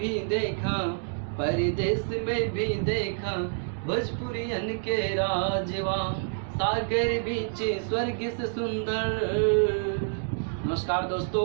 देखा, परदेश में भी देखा, भोजपुरियन के राजवा। सागर बीच स्वर्ग से सुंदर। नमस्कार दोस्तों,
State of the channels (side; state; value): left; silent; 59 dB below the other